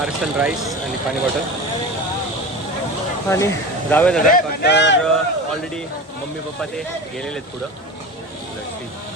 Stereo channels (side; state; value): both; normal; correlation 0.30